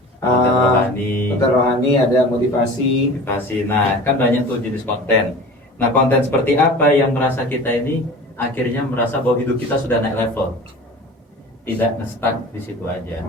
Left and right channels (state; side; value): normal; both; correlation 0.38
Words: Konten rohani, Konten rohani, ada motivasi. motivasi. Nah, kan banyak tuh jenis konten. Nah, konten seperti apa yang merasa kita ini akhirnya merasa bahwa hidup kita sudah naik level, tidak nge-stuck di situ aja.